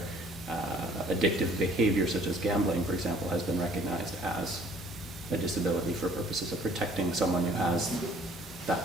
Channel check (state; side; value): normal; both; correlation 0.56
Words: addictive behavior such as gambling, for example, has been recognized as a disability for purposes of protecting someone who has that